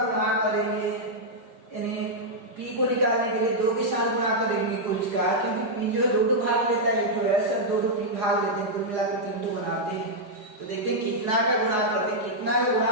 करेंगे, यानी पी को निकालने के लिए 2 के साथ गुणा करेंगे कुछ का, क्योंकि पी जो 2 भाग लेता है, एक तो एस और 2 पी भाग लेते हैं, कुल मिलाकर 3 बनाते हैं। तो देखिए कितना का गुणा करते हैं, कितना का गुणा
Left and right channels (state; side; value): late; left; 4.8 ms